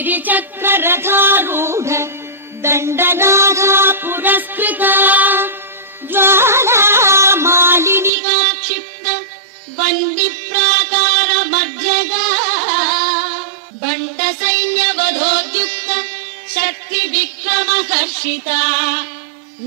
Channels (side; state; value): left; drops out; at 8.1 s